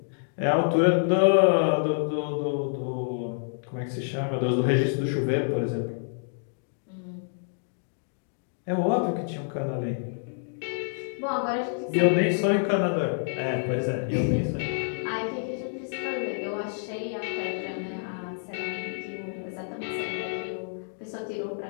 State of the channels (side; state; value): right; silent; digital silence